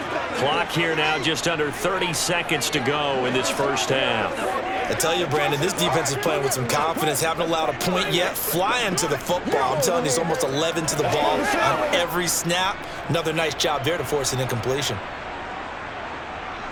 Clock here now just under 30 seconds to go in this first half. I tell you, Brandon, this defense is playing with some confidence. Haven't allowed a point yet. Flying to the football. I'm telling you, it's almost 11 to the ball on every snap. Another nice job there to force an incompletion.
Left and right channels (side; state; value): both; identical; correlation 1.00